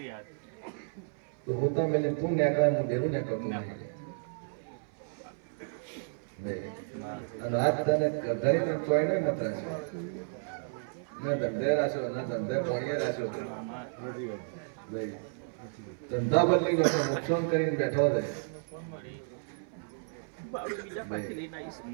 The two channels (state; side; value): silent; left; 56 dB below the other